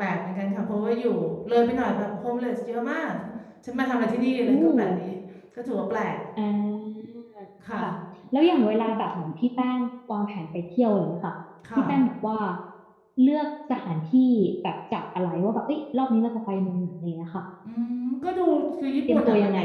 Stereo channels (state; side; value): identical; both; correlation 1.00